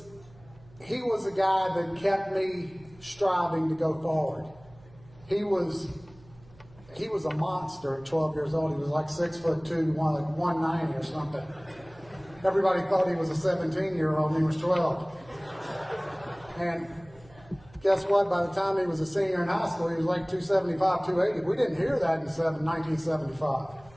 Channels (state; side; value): noise; right; hum, 25 dB below the sound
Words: a guy that kept me striving to go forward. He was a monster at 12 years old. He was like 6'2", 190 or something. Everybody thought he was a 17-year-old and he was 12. And guess what? By the time he was a senior in high school, he was like 275, 280. We didn't hear that in 1975.